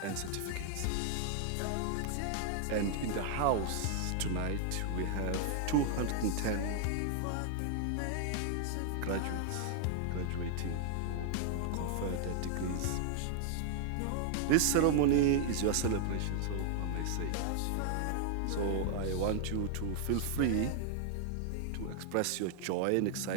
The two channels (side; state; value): both; different; correlation -0.01